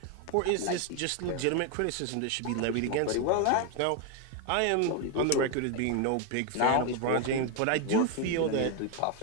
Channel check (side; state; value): both; different; correlation 0.01